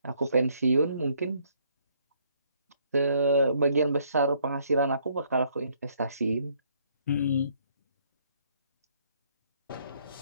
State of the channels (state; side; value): inverted; both; correlation -0.67